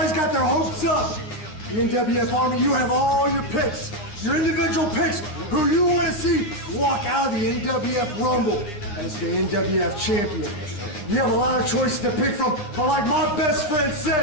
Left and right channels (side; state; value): right; late; 9.8 ms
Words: got their hopes up. The NWF Army, you have all your picks, your individual picks, who you want to see walk out of the NWF Rumble as the NWF champion. You have a lot of choices to pick from, but like my best friend